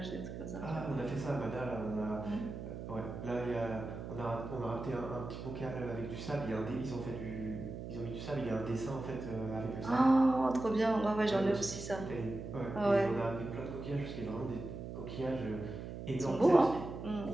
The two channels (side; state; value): right; noise; hum, 8 dB below the sound